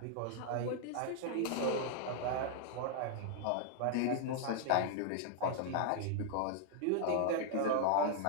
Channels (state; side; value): different; both; correlation 0.00